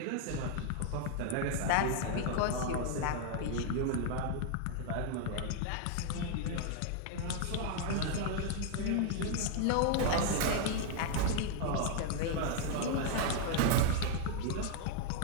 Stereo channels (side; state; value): both; different; correlation 0.00